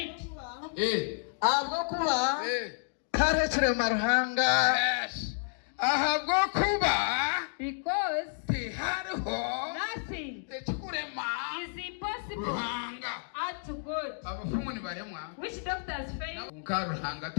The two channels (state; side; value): silent; right; digital silence